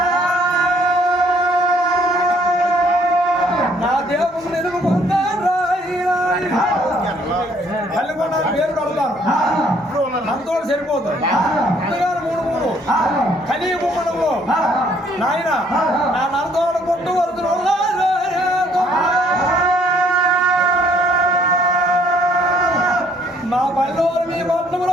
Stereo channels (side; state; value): both; normal; correlation 0.63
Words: నా దేవుడు నిలుపుకుంటాను తల్లికొండ పేరు పెడతాను అంతో సరిపోతుంది ముందుగానే 3 కలిగి బొమ్మడంలో నాయన నా నరదోడ కొట్టు వరుతులు